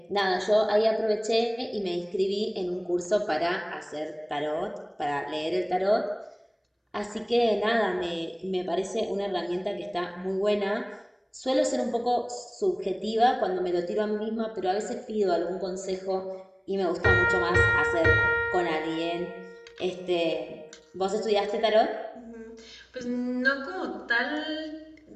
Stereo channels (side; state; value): both; identical; correlation 1.00